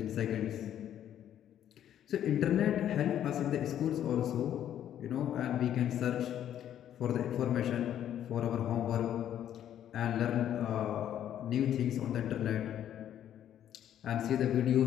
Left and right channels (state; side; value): quieter; right; 10.6 dB